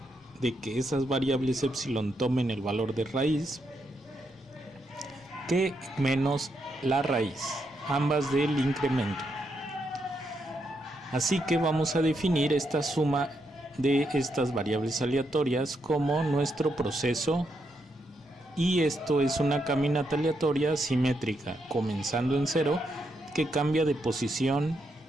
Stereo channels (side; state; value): both; normal; correlation 0.80